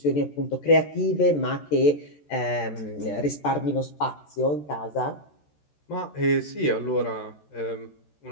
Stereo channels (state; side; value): late; right; 13 ms